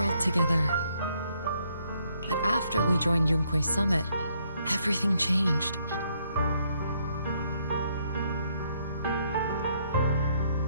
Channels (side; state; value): both; inverted; correlation -0.71